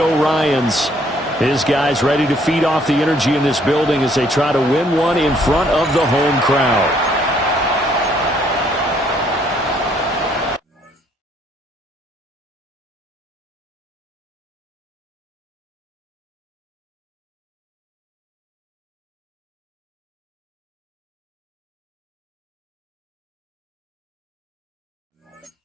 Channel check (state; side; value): normal; both; correlation 0.65